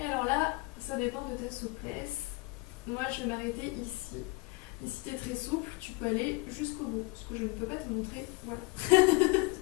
alors là, ça dépend de ta souplesse. Moi je vais m'arrêter ici. Et si tu es très souple, tu peux aller jusqu'au bout. Parce que je ne peux pas te montrer. Voilà.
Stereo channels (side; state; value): right; quieter; 25.0 dB